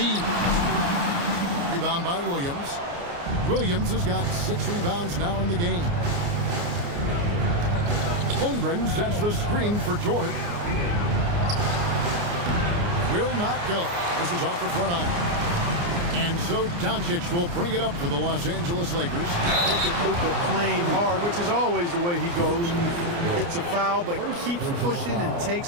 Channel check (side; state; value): left; late; 29 ms